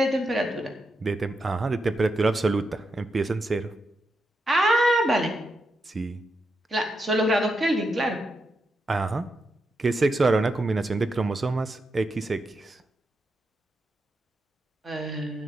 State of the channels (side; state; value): both; normal; correlation 0.84